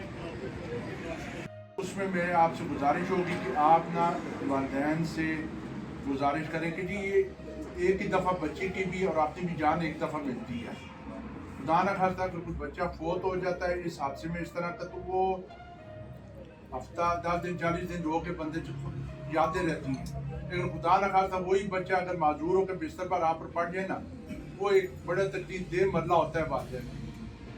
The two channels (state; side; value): identical; both; correlation 1.00